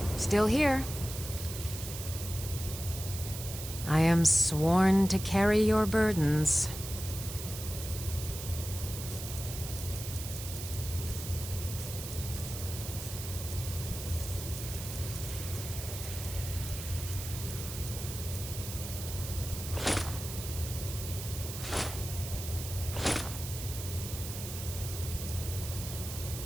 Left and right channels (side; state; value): right; noise; hiss, 8 dB below the sound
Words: Still here. I am sworn to carry your burdens.